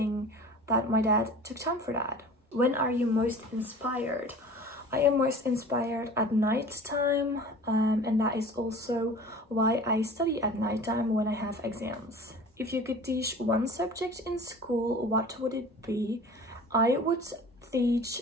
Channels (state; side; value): normal; both; correlation 0.42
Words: that my dad took time for that. When are you most inspired? I am most inspired at night time, and that is also why I study at night time when I have exams. If you could teach one subject in school, what would it be? I would teach